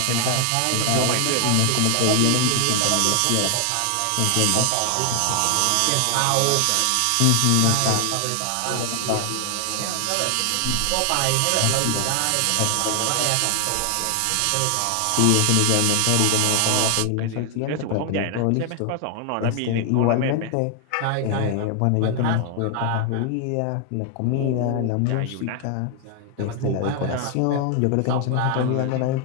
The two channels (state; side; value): different; both; correlation 0.00